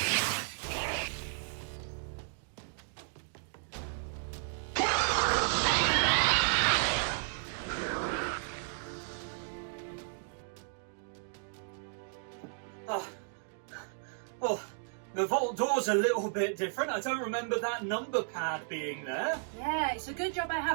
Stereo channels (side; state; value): left; silent; digital silence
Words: Well, the vault door's a little bit different. I don't remember that number pad being there. Yeah, it's a good job I